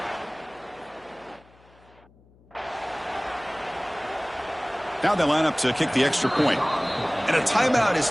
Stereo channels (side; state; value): left; noise; hum, 28 dB below the sound